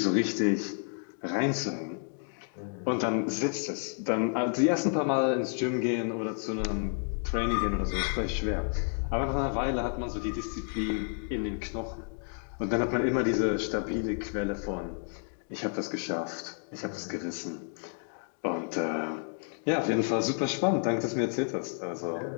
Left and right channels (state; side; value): silent; right; 57 dB below the other